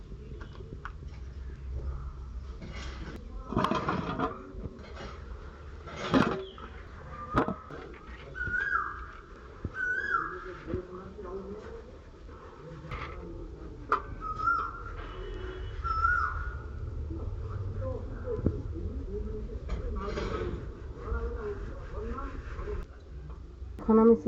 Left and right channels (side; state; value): both; identical; correlation 1.00